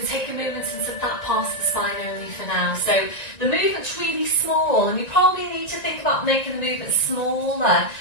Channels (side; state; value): right; late; 1.9 ms